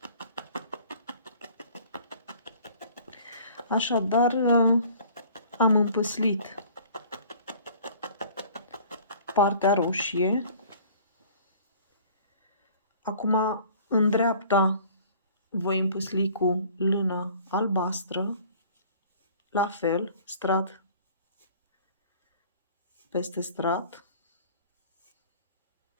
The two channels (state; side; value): inverted; both; correlation -0.50